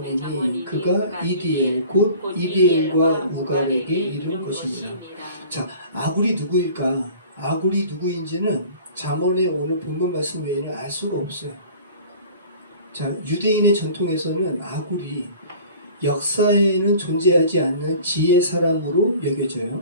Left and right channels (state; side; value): inverted; both; correlation -0.45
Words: 그가 이디엘 곧 이디엘과 우갈에게 이른 것입니다. 자, 아굴이 누구일까? 아굴이 누구인지는 잠언의 오늘 본문 말씀 외에는 알 수가 없어요. 자, 유대인의 전통에서는 아굴이 역사에는 존재하지 않는 지혜 사람으로 여겨져요.